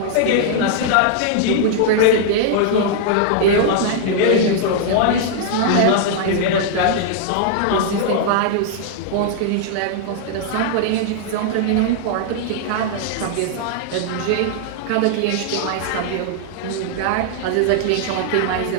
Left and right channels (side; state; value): both; different; correlation -0.01